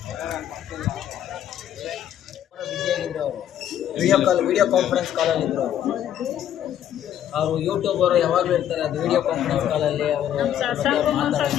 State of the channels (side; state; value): right; quieter; 10.5 dB